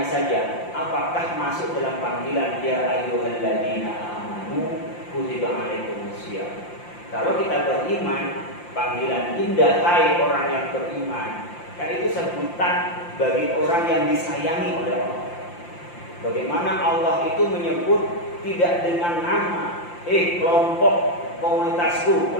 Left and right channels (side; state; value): right; late; 5.8 ms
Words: saja, apakah masuk dalam panggilan ya ayyuhalladzina amanu kutiba alaikumusiyam. Kalau kita beriman, panggilan indah hai orang yang beriman, kan itu sebutan bagi orang yang disayangi oleh Allah. Bagaimana Allah itu menyebut tidak dengan nama, kelompok komunitasku,